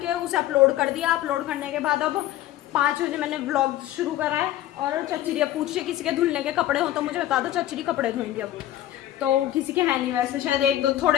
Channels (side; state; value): right; quieter; 13.6 dB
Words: उसे अपलोड कर दिया। अपलोड करने के बाद अब 5 बजे मैंने व्लॉग शुरू करा है। और चचरी पूछ रही किसी के धुलने के कपड़े हो तो मुझे बता दो, चचरी कपड़े धोएंगे अब। तो किसी के है नहीं वैसे, शायद 1-2